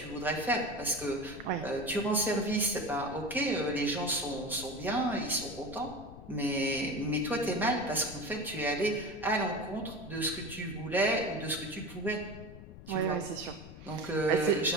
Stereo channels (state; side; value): noise; left; rumble, 15 dB below the sound